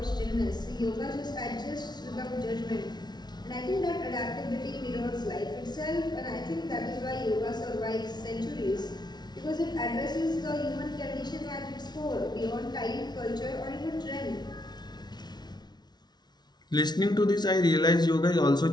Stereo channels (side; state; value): right; late; 0.20 ms